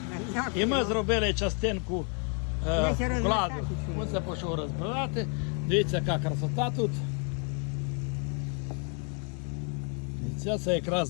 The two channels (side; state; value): right; quieter; 39.7 dB